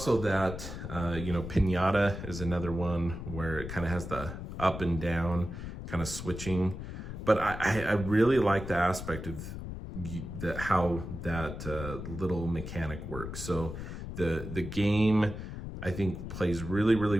that, you know, Pinata is another one where it kind of has the up and down kind of switching. But I really like the aspect of how that little mechanic works. So the game, I think, plays really, really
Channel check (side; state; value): left; noise; rumble, 8 dB below the sound